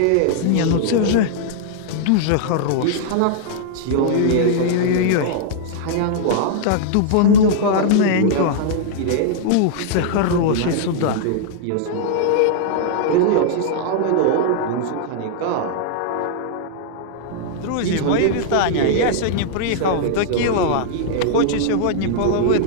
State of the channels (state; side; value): different; both; correlation -0.01